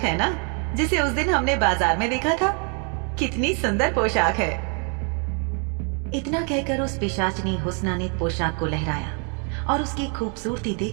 ना जिसे उस दिन हमने बाजार में देखा था। कितनी सुंदर पोशाक है। इतना कहकर उस पिशाचनी हुस्ना ने पोशाक को लहराया और उसकी खूबसूरती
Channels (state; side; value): quieter; left; 38.5 dB